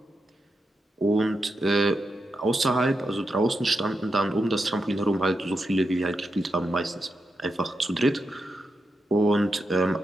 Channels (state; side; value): normal; both; correlation 0.87